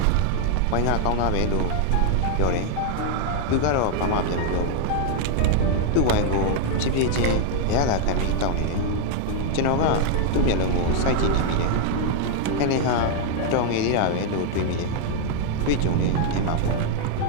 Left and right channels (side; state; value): both; different; correlation 0.00